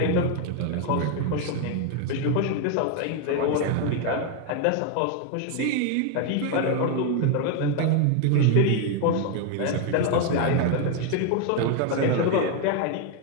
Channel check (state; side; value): different; both; correlation 0.01